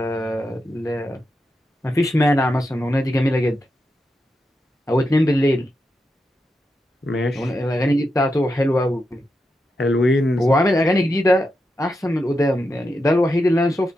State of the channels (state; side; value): normal; both; correlation 0.87